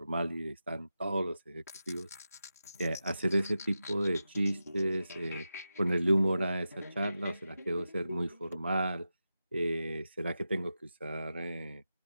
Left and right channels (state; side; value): inverted; both; correlation -0.91